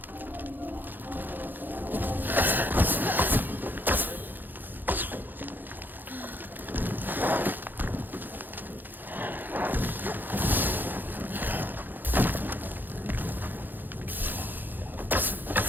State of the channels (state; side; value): late; left; 0.089 ms